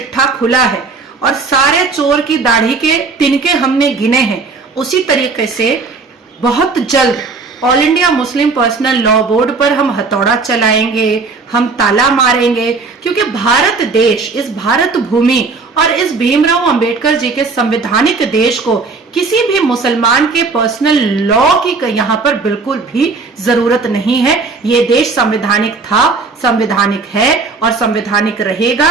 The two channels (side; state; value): left; quieter; 4.2 dB